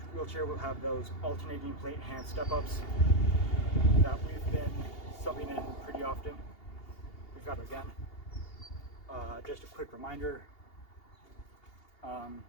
wheelchair, we'll have those alternating plate hand step-ups that we've been subbing in pretty often. We've got it again. Just a quick reminder.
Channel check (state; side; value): late; right; 2.8 ms